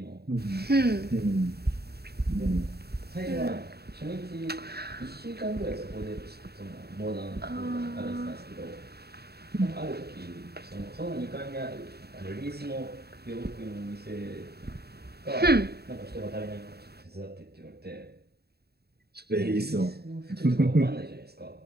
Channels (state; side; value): late; left; 0.47 ms